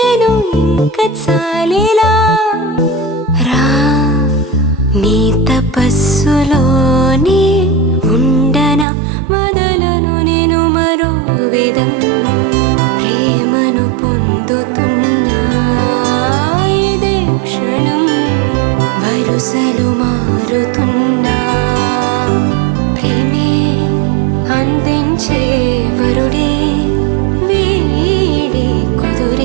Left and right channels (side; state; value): left; drops out; at 8.8 s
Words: ఇంక చాలిలా రా నీ తపస్సులోనే ఉండన వదలను నేను మరో విధం ప్రేమను పొందుతున్నా ఇదే క్షణం వరుసలు మారుతున్నా ప్రేమే అందించే వరుడే వీడే